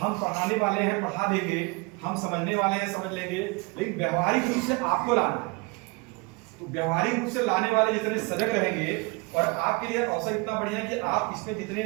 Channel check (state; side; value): quieter; left; 28.2 dB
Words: हम पढ़ाने वाले हैं, पढ़ा देंगे, हम समझने वाले हैं, समझ लेंगे, लेकिन व्यवहारिक रूप से आपको लाना है। तो व्यवहारिक रूप से लाने वाले जितने सजग रहेंगे, और आपके लिए अवसर इतना बढ़िया है कि आप इसमें जितने